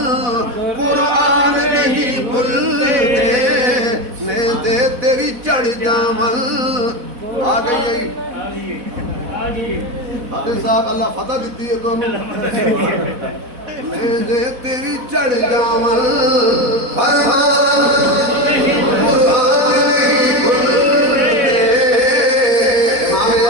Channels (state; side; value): late; left; 4.1 ms